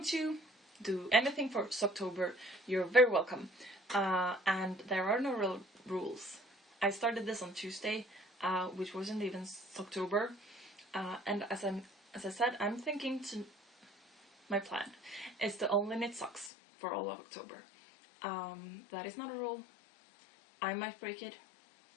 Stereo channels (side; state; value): right; drops out; at 16.5 s